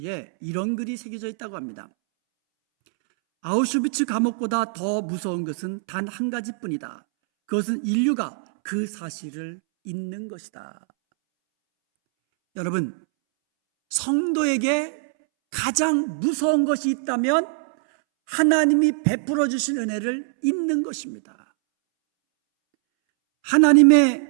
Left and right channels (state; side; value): silent; left; 63 dB below the other